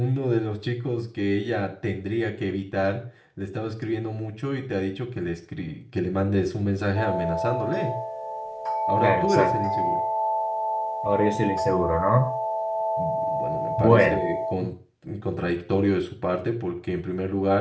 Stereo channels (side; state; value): both; identical; correlation 1.00